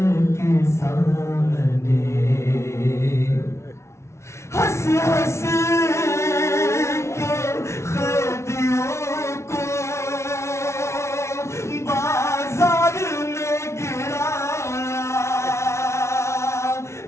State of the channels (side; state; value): right; late; 0.13 ms